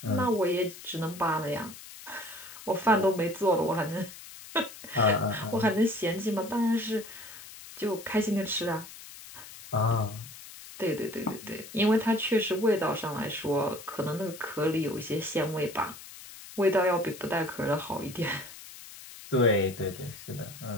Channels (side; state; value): left; noise; hiss, 15 dB below the sound